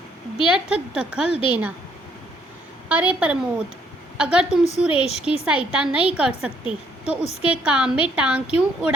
व्यर्थ दखल देना। अरे प्रमोद, अगर तुम सुरेश की सहायता नहीं कर सकते तो उसके काम में टांग क्यों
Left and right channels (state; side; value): normal; both; correlation 0.68